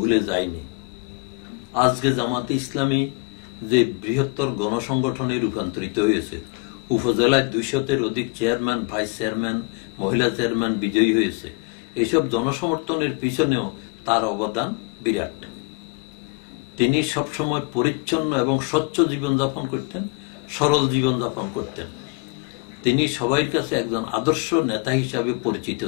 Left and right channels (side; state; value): right; quieter; 31.5 dB